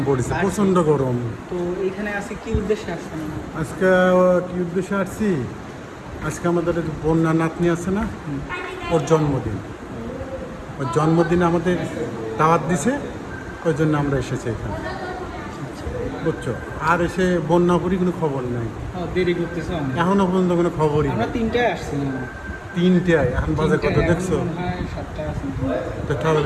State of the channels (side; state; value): both; identical; correlation 1.00